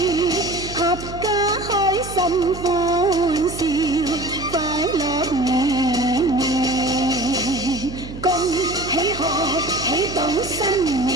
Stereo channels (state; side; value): noise; right; hum, 12 dB below the sound